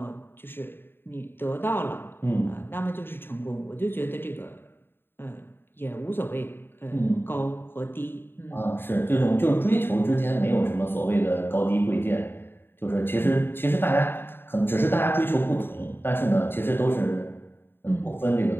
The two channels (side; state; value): right; late; 0.10 ms